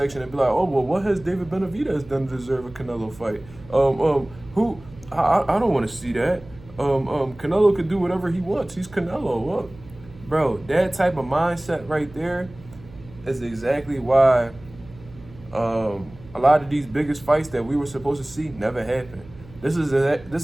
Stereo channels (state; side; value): noise; right; hum, 21 dB below the sound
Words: and be like, "Oh, well, what has David Benavidez done to deserve a Canelo fight? Who? I don't want to see that. Canelo could do whatever he wants. He's Canelo." Well, bro, that type of mindset right there is exactly why a lot of these biggest fights that we were supposed to see never happened. This